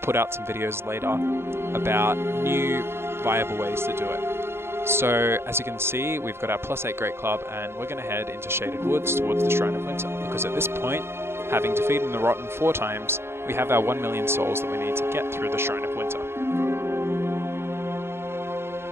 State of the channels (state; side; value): late; left; 0.12 ms